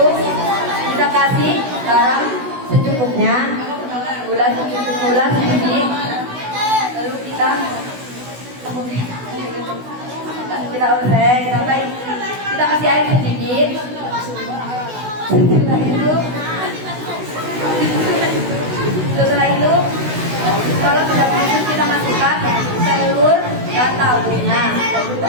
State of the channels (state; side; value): late; left; 16 ms